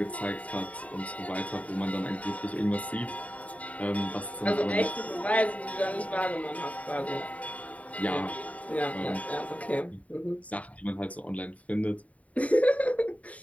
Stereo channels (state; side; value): late; right; 0.068 ms